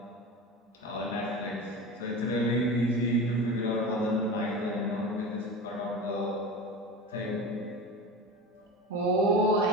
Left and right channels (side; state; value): both; normal; correlation 0.29